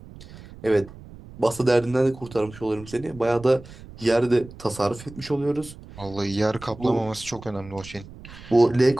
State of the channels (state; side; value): noise; right; rumble, 18 dB below the sound